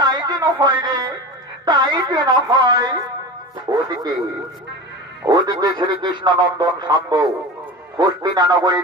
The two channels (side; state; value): both; normal; correlation 0.30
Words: যেন হয় রে, তাই যেন হয়। ওদিকে ওদিকে শ্রীকৃষ্ণ নন্দন শাম্ব হস্তিনা